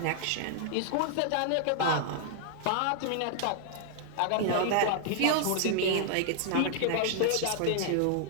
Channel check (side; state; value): both; different; correlation -0.01